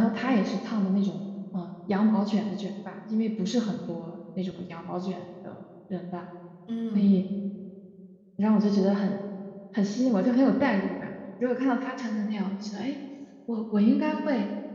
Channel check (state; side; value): identical; both; correlation 1.00